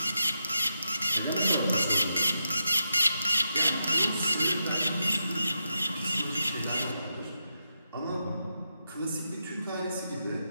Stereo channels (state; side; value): inverted; both; correlation -0.86